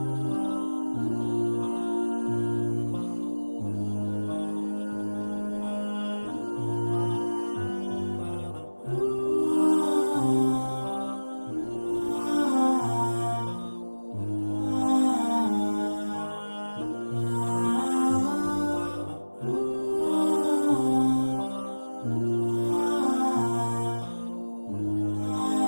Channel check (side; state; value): both; inverted; correlation -1.00